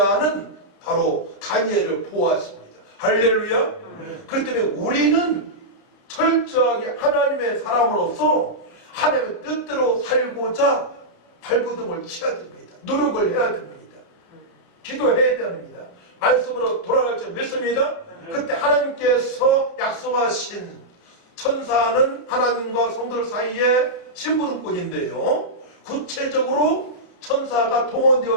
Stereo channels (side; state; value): right; late; 30 ms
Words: 바로 다니엘을 보호하십니다. 할렐루야. 그렇기 때문에 우리는 철저하게 하나님의 사람으로서 하나님의 뜻대로 살고자 발버둥을 쳐야 됩니다. 노력을 해야 됩니다. 기도해야 됩니다. 말씀으로 돌아갈 줄 믿습니다. 그때 하나님께서 약속하신 천사는 하나님과 성도들 사이에 심부름꾼인데요. 구체적으로 천사가